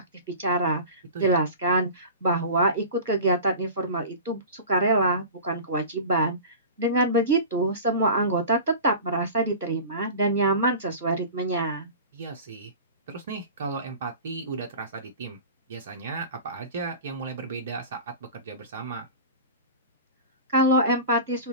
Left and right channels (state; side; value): inverted; both; correlation -0.35